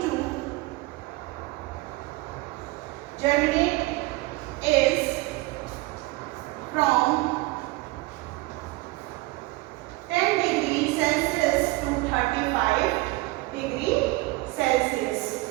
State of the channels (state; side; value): quieter; left; 21.7 dB